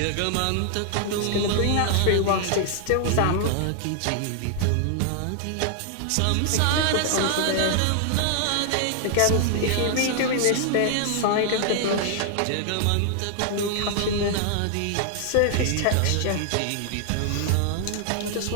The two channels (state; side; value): different; both; correlation 0.00